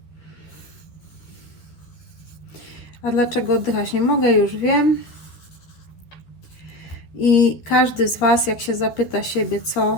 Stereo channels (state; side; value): late; right; 12 ms